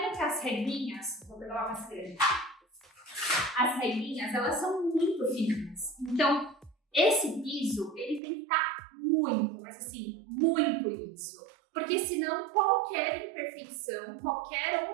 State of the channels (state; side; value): drops out; left; at 8.2 s